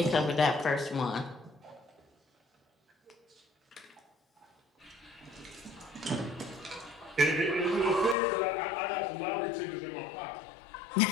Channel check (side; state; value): right; drops out; at 8.2 s